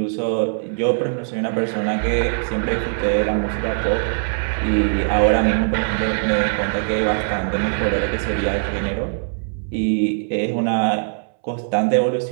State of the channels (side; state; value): left; silent; 65 dB below the other